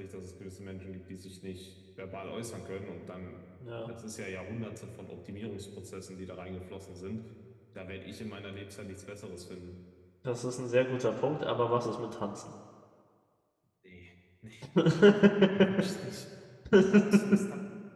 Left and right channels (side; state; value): both; identical; correlation 1.00